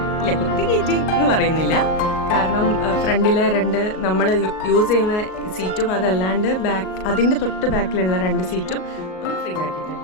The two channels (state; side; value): late; right; 38 ms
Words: ഇല്ല, കുത്തി കയറ്റി എന്ന് പറയുന്നില്ല, കാരണം ഫ്രണ്ടിലെ 2 നമ്മൾ യൂസ് ചെയ്യുന്ന സീറ്റും അതല്ലാണ്ട് അതിൻ്റെ തൊട്ട് ബാക്കിലുള്ള 2 സീറ്റും ഒന്ന് ഫ്രീ